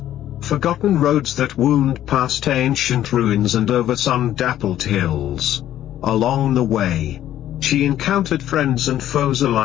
forgotten roads that wound past ancient ruins and over sun-dappled hills. Along the way, she encountered friends and foes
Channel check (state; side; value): quieter; right; 12.2 dB